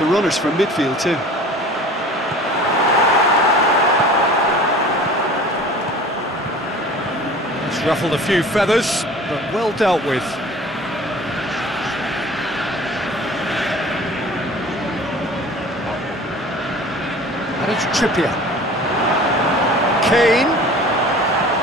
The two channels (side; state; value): both; normal; correlation 0.44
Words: runners from midfield too. It's ruffled a few feathers, but well dealt with. And it's Trippier. Kane